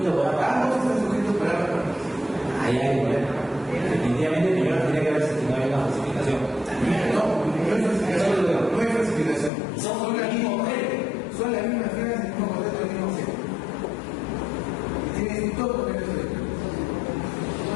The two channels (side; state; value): right; drops out; at 9.5 s